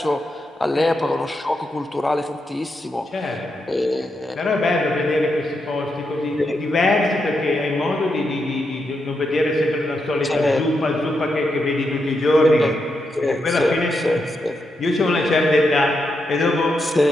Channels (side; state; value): both; normal; correlation 0.84